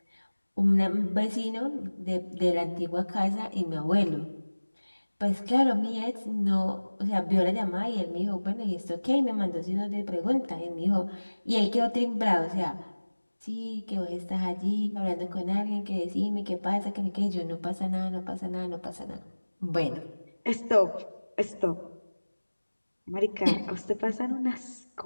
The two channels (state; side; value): inverted; both; correlation -1.00